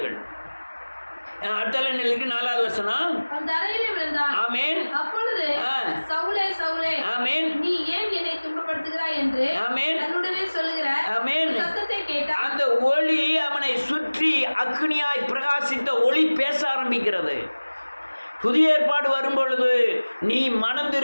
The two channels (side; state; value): both; inverted; correlation -1.00